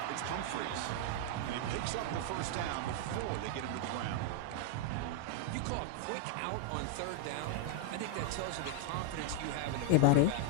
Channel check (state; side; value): different; both; correlation 0.00